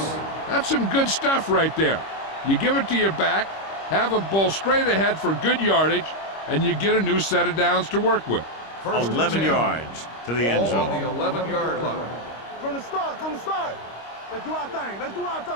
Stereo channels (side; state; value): right; late; 25 ms